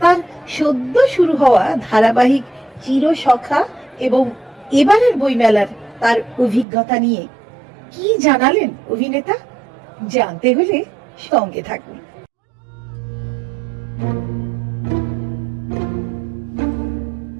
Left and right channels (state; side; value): drops out; left; at 6.7 s